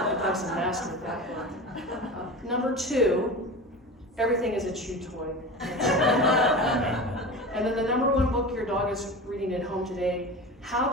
dog's a master at that book. Number 2, Everything is a Chew Toy. And then the number 1 book your dog is reading at home today, How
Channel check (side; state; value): both; normal; correlation 0.30